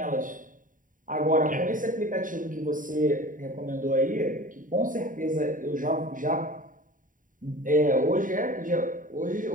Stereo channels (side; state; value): left; late; 0.39 ms